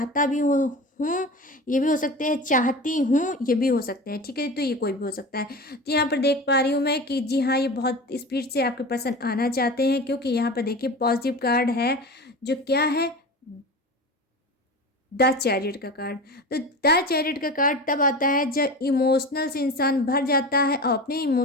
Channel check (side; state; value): both; normal; correlation 0.31